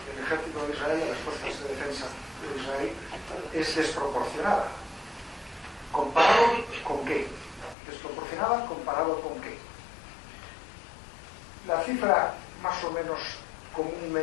ejército de Israel y las fuerzas de defensa de Israel es desproporcionada. ¿Comparado con qué? ¿Desproporcionada comparado con qué? La cifra más o menos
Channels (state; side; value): drops out; right; at 7.8 s